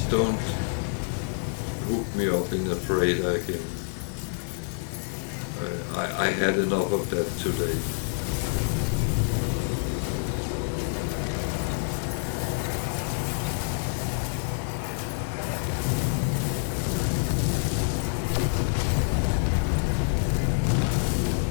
don't hook me up in a freighter again. I had enough of that today.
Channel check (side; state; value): right; silent; digital silence